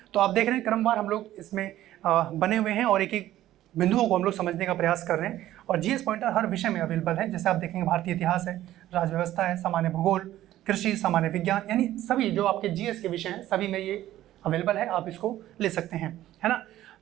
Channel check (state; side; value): quieter; left; 13.8 dB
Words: तो आप देख रहे हैं क्रमवार हम लोग इसमें बने हुए हैं और एक एक बिंदुओं को हम लोग समझने का प्रयास कर रहे हैं। और जीएस पॉइंटर हर विषय में अवेलेबल है। जैसे आप देखेंगे भारतीय इतिहास है, राज्य व्यवस्था है, सामान्य भूगोल, कृषि, सामान्य विज्ञान, यानी सभी जो आपके जीएस के विषय हैं सभी में ये अवेलेबल है। आप इसको ले सकते हैं, है ना।